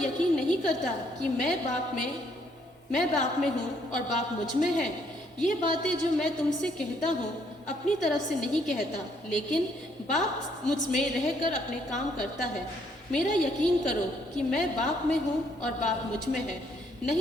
नहीं करता कि मैं बाप में हूँ और बाप मुझ में है? ये बातें जो मैं तुमसे कहता हूँ अपनी तरफ से नहीं कहता, लेकिन बाप मुझ में रहकर अपने काम करता है। मेरा यकीन करो कि मैं बाप में हूँ और बाप मुझ में है,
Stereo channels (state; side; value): normal; both; correlation 0.69